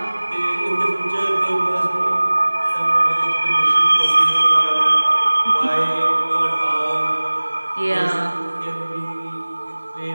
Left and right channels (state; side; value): inverted; both; correlation -1.00